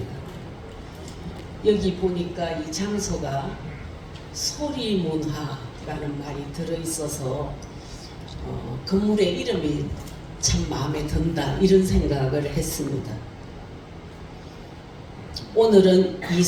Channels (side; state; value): both; identical; correlation 1.00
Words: 여기 보니까 이 장소가 소리문화라는 말이 들어있어서 건물의 이름이 참 마음에 든다 이런 생각을 했습니다. 오늘은 이